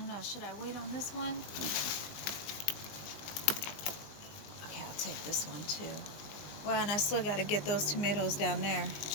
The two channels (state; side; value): late; right; 19 ms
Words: know, should I wait on this one? Okay, I'll take this one too. Wow, and I still got to get those tomatoes down there.